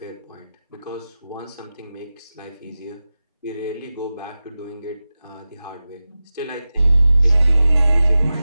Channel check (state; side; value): inverted; both; correlation -0.95